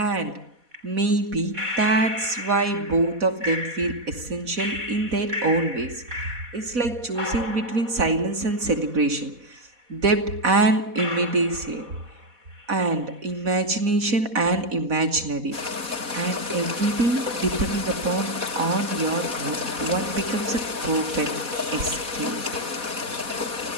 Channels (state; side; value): late; left; 4.1 ms